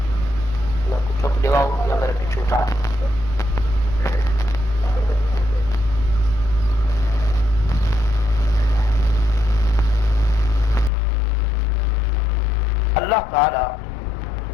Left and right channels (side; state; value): right; drops out; at 10.9 s